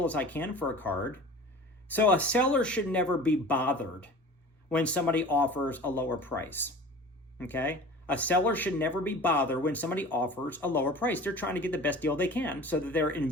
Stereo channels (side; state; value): both; normal; correlation 0.40